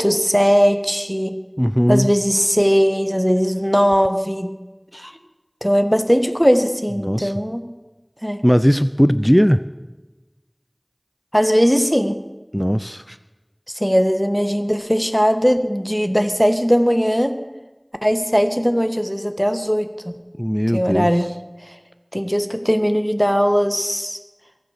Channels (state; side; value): identical; both; correlation 1.00